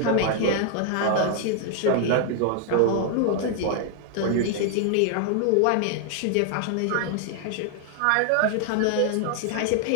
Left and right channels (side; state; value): both; different; correlation 0.00